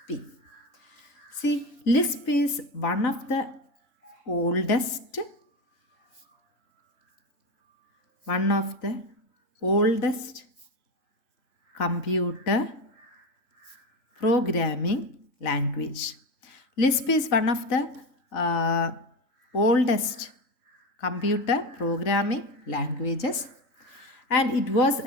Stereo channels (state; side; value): late; right; 4.0 ms